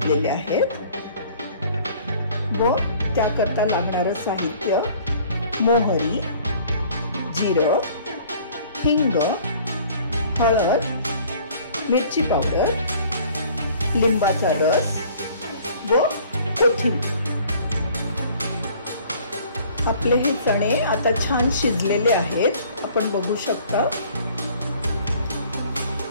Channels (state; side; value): inverted; both; correlation -0.53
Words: आहेत। व त्याकरता लागणारं साहित्य मोहरी, जिरं, हिंग, हळद, मिरची पावडर, लिंबाचा रस व कोथिंबीर। आपले हे चणे आता छान शिजलेले आहेत, आपण बघू शकता।